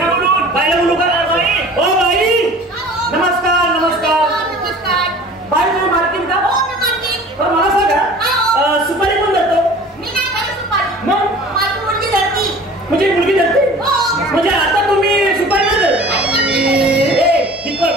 बाईला बोलू का. ओ बाई नमस्कार. नमस्कार बाई तुम्ही मार्केट का. मला सांगा सुपारी कोण धरतो. मग म्हणजे मुलगी धरते. म्हणजे आता तुम्ही सुपारी नाही धरत.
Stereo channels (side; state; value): both; normal; correlation 0.45